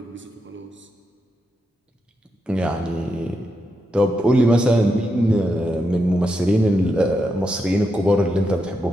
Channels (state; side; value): normal; both; correlation 0.84